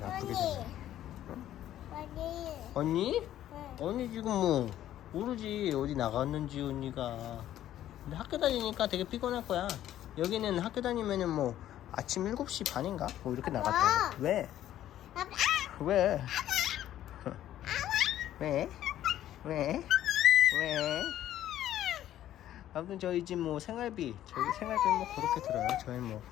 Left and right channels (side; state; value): right; quieter; 12.4 dB